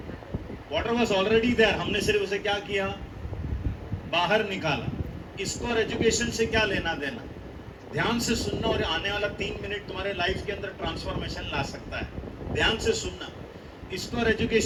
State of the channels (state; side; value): identical; both; correlation 1.00